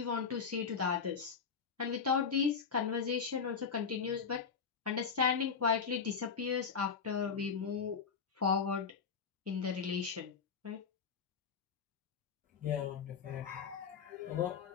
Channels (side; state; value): right; quieter; 6.1 dB